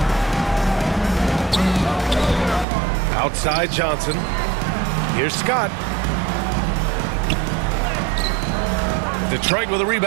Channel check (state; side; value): drops out; left; at 2.7 s